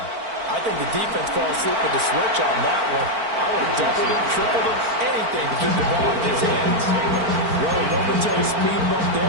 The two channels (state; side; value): late; left; 4.5 ms